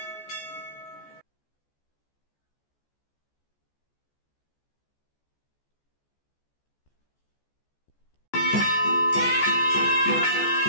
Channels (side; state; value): right; late; 14 ms